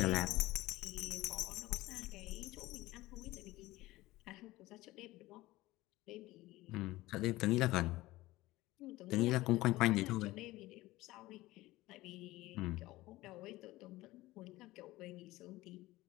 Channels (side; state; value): right; quieter; 18.4 dB